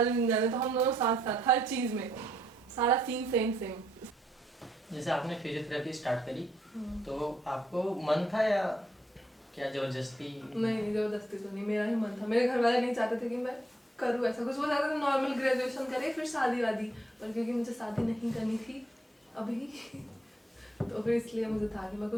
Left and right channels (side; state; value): both; normal; correlation 0.73